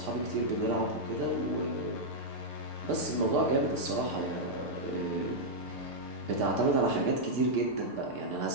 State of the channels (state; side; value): late; right; 6.7 ms